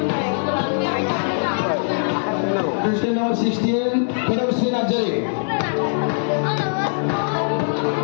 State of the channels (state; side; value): silent; right; 62 dB below the other